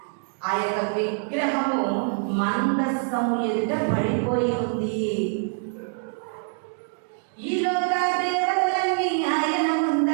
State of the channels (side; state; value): left; silent; 62 dB below the other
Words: ఆ యొక్క విగ్రహము మందసము ఎదుట పడిపోయి ఉంది. ఈ లోక దేవతలన్నీ ఆయన